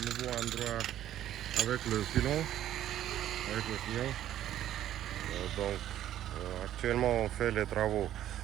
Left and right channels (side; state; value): left; quieter; 12.1 dB